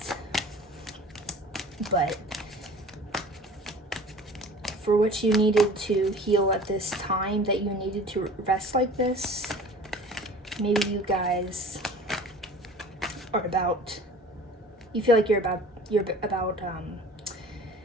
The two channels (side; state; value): both; normal; correlation 0.43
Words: but for what you needed to heal at this time, that you needed to rest like this, maybe you guys are about, you feel like you're about